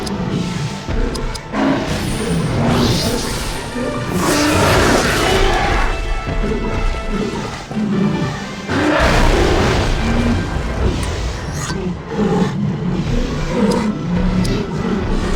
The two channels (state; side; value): identical; both; correlation 1.00